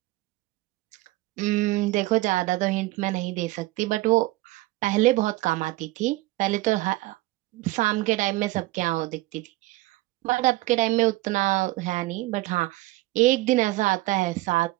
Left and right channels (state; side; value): quieter; left; 19.0 dB